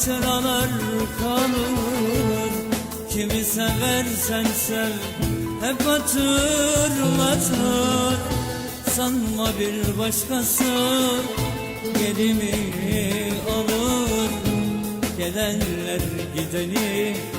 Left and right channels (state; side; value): identical; both; correlation 1.00